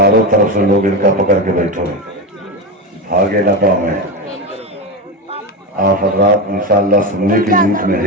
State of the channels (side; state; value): both; normal; correlation 0.17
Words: طرف سے لوگ ان کا پکڑ کے بیٹھو, بھاگے نہ پاؤں میں. آپ حضرات انشاءاللہ سننے کی نیت میں